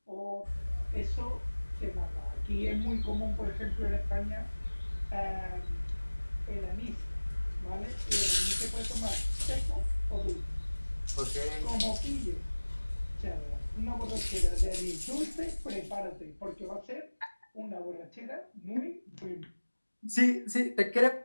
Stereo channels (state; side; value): inverted; both; correlation -1.00